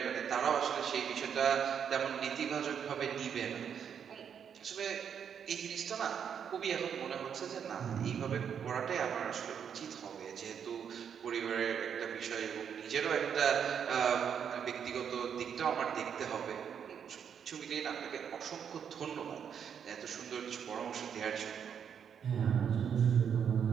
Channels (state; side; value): quieter; left; 7.8 dB